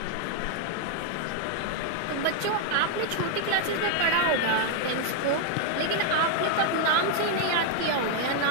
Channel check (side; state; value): both; different; correlation 0.00